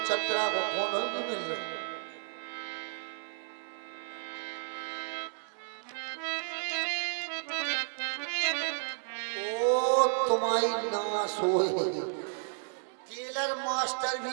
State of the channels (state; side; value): silent; left; digital silence